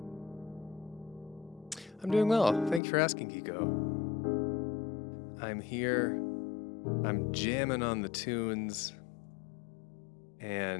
I'm doing well. Thank you for asking, Kiko. I'm here. I'm jamming on the tunes.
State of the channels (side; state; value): right; drops out; at 2.8 s